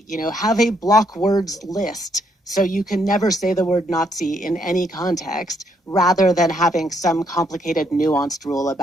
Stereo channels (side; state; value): both; normal; correlation 0.73